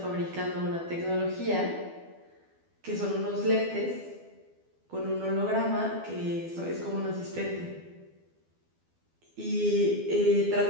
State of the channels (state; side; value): late; left; 12 ms